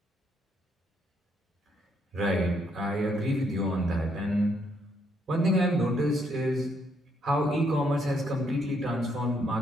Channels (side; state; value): both; normal; correlation 0.73